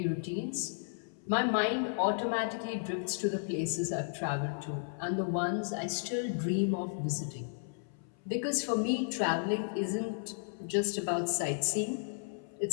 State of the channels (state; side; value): silent; right; 55 dB below the other